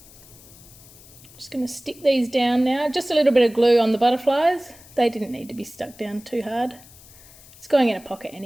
Just going to stick these down now. Just a little bit of glue on the butterflies. They didn't need to be stuck down too hard. It's going in a pocket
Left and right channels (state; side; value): noise; left; hiss, 22 dB below the sound